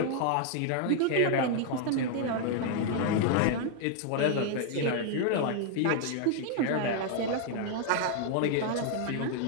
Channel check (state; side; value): different; both; correlation 0.00